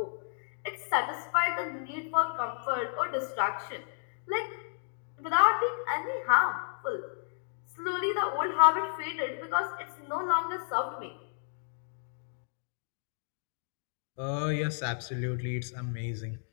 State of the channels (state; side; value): silent; right; digital silence